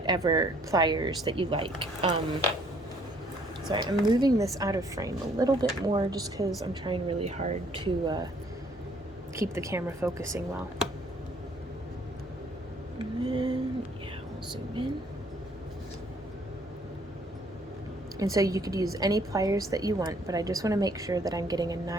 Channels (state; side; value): normal; both; correlation 0.62